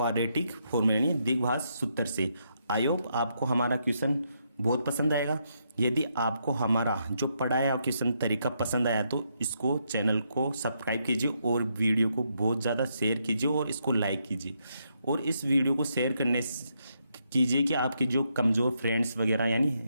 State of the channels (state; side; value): inverted; both; correlation -0.78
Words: फॉर्मूला यानी द्विघात सूत्र से। आई होप आपको हमारा क्वेश्चन बहुत पसंद आएगा। यदि आपको हमारा जो पढ़ाया क्वेश्चन तरीका पसंद आया तो इसको चैनल को सब्सक्राइब कीजिए और वीडियो को बहुत ज़्यादा शेयर कीजिए और इसको लाइक कीजिए। और इस वीडियो को शेयर करने कीजिए कि आपके जो कमज़ोर फ्रेंड्स वगैरह, यानी